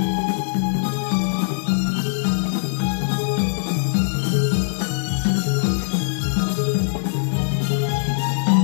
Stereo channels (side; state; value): right; silent; digital silence